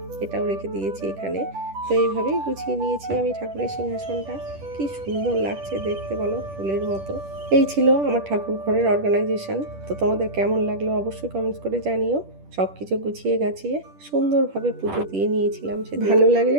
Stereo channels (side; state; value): left; late; 10 ms